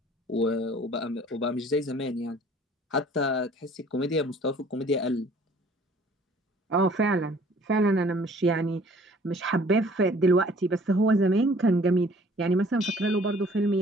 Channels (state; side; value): normal; both; correlation 0.54